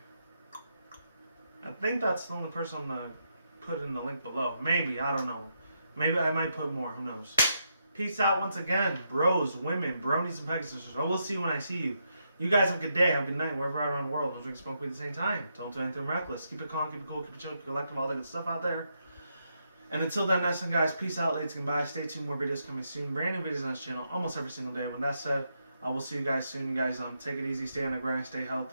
I think that's the only person I'm gonna put in the link below. Maybe, I don't know. Maybe I might put more, who knows. Peace out once again, bros, women, bronies, and pegasisters. I will see you when I see you. You guys have a good day, have a good night, wherever you're around the world. Don't drink, smoke weed at the same time. Don't do anything reckless. Keep it calm, keep it cool, keep it chill, keep it collective, all that good stuff out there. And until then, next time, guys, peace out, ladies, and goodbye. Stay tuned, more videos coming soon. Brand new videos on this channel almost every single day. When that's said, I will see you guys soon. You guys take it easy, stay on the grind, stay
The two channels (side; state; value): both; inverted; correlation -0.81